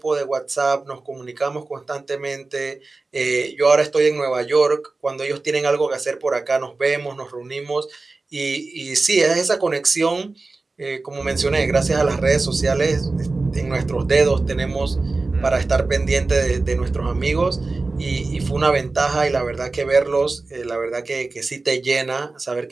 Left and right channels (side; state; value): left; quieter; 3.5 dB